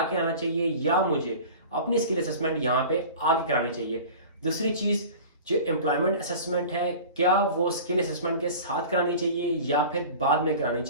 के आना चाहिए या मुझे अपनी स्किल असेसमेंट यहाँ पे आगे करानी चाहिए। दूसरी चीज़, जो एम्प्लॉयमेंट असेसमेंट है, क्या वो स्किल असेसमेंट के साथ करानी चाहिए या फिर बाद में करानी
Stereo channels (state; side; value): inverted; both; correlation -0.38